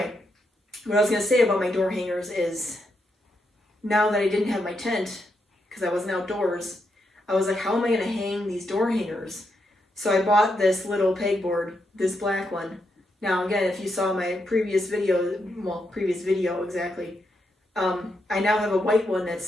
what I was going to say about my door hangers is now that I didn't have my tent because I wasn't outdoors, I was like, how am I going to hang these door hangers? So I bought this little pegboard, this black one. Now again, if you saw my previous video exactly, I now have a white one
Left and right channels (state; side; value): normal; both; correlation 0.81